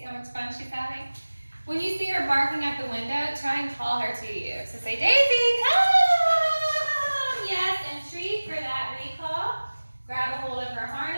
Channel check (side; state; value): both; inverted; correlation -1.00